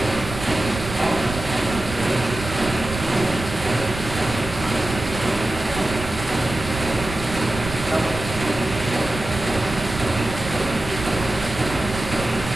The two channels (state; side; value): noise; right; rumble, 9 dB below the sound